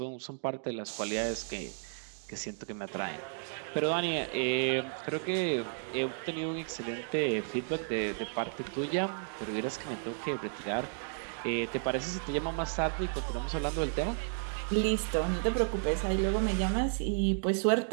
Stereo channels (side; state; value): left; silent; digital silence